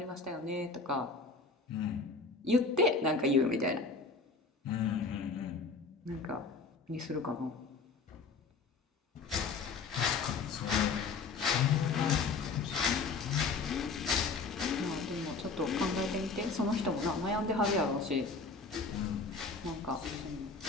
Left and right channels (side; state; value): right; quieter; 4.3 dB